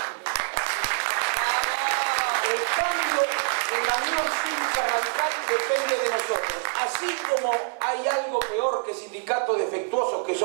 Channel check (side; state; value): left; silent; 60 dB below the other